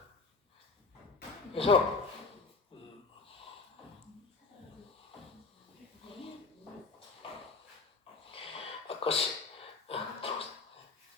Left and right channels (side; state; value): right; quieter; 4.1 dB